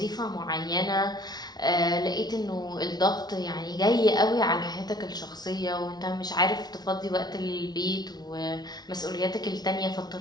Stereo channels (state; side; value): late; right; 0.19 ms